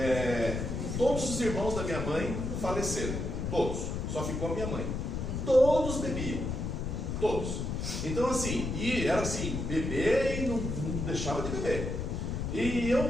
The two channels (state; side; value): noise; left; rumble, 3 dB below the sound